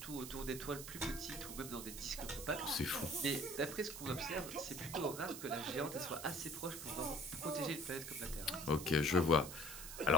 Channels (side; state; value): right; noise; hiss, 9 dB below the sound